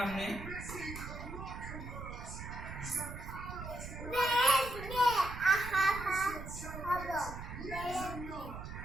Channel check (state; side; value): noise; right; rumble, 9 dB below the sound